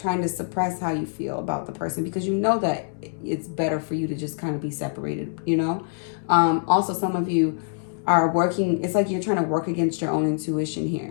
to suppress how you feel about the person because you know that it's better for you to just kind of be separated, you know. Also, some of you are working, it's like you're trying to work against your own intuition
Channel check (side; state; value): right; silent; digital silence